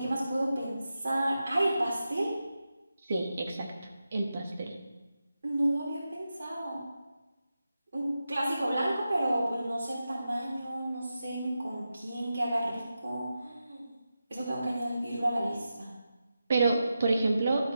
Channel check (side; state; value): both; inverted; correlation -0.91